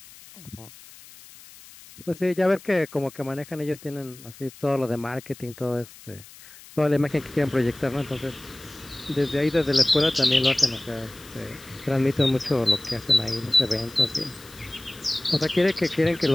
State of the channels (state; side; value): noise; left; hiss, 20 dB below the sound